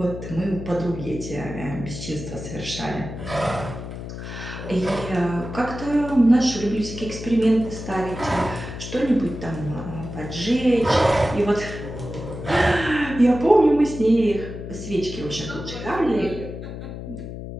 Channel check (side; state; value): left; noise; hum, 9 dB below the sound